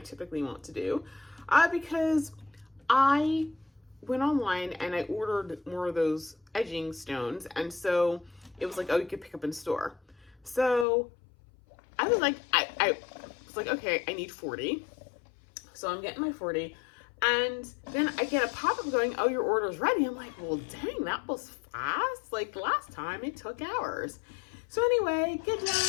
typically wont to do, because I went online and I ordered more of those edging stones, and so it was like, oh, you could pick up in store. So I was like, I was like, okay, I need 40. So I'm getting my 40. And then I get a pop-up going, oh, your order's ready. I'm like, well, dang, that was fast. Like last time it took hours. So anyway, get down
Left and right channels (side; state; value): right; drops out; at 10.9 s